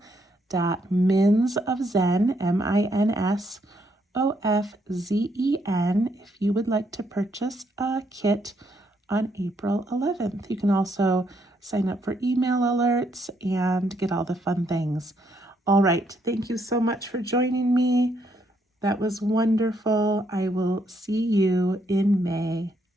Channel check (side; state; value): both; normal; correlation 0.73